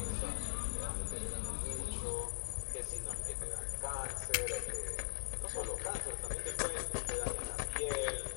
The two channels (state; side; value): silent; right; digital silence